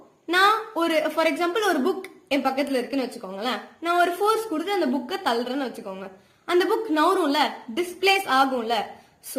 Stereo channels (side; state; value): both; identical; correlation 1.00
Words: நான் ஒரு ஃபார் எக்ஸாம்பிள் ஒரு புக் என் பக்கத்துல இருக்குன்னு வச்சுக்கோங்களேன். நான் ஒரு ஃபோர்ஸ் கொடுத்து அந்த புக்கை தள்ளுறேன்னு வச்சுக்கோங்க. அந்த புக் நவரும்ல, டிஸ்பிளேஸ் ஆகும்ல.